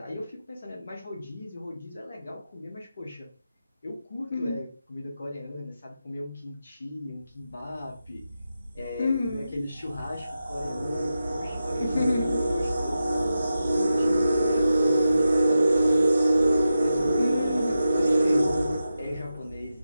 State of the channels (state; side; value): inverted; both; correlation -0.90